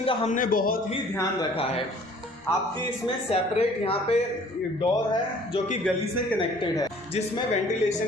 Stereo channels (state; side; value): normal; both; correlation 0.53